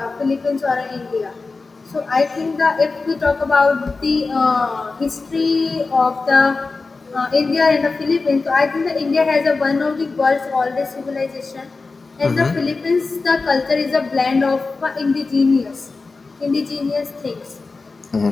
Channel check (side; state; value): right; quieter; 3.9 dB